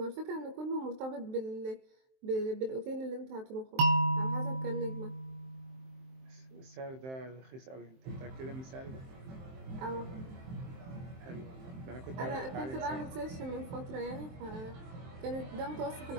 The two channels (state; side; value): late; left; 23 ms